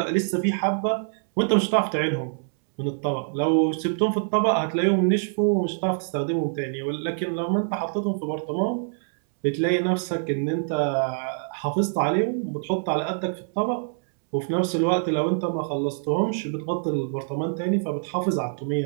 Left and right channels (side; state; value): left; silent; 62 dB below the other